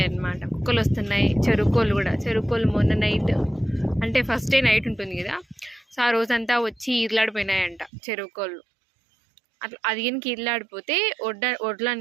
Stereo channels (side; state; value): left; drops out; at 7.9 s